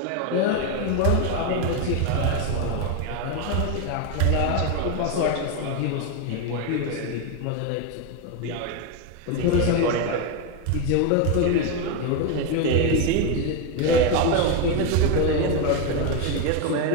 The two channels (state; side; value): different; both; correlation 0.02